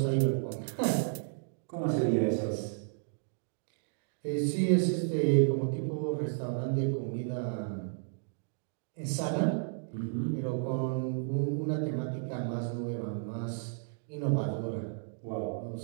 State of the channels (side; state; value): left; silent; digital silence